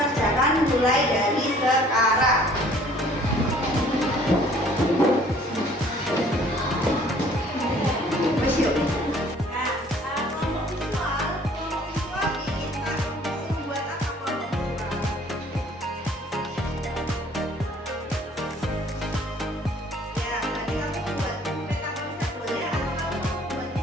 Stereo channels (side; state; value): both; normal; correlation 0.56